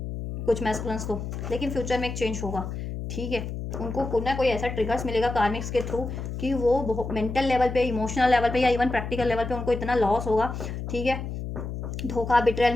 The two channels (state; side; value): noise; left; hum, 6 dB below the sound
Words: कुछ मैस्कुलिन्स को, लेकिन फ्यूचर में एक चेंज होगा, ठीक है। उनको कोई ना कोई ऐसा ट्रिगर्स मिलेगा कार्मिक्स के थ्रू कि वो मेंटल लेवल पे, इमोशनल लेवल पे, या इवन प्रैक्टिकल लेवल पे उनको इतना लॉस होगा, ठीक है, धोखा, बिट्रेयल